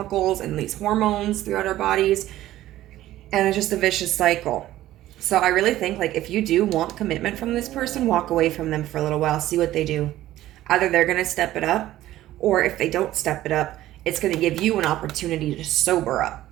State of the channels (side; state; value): left; quieter; 14.5 dB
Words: and these hormones throughout our bodies, and it's just a vicious cycle. So I really think, like, if you do want commitment from this person, walk away from them for a little while, see what they do. Either they're going to step it up, or if they don't step it up, it's going to give you an opportunity to sober up.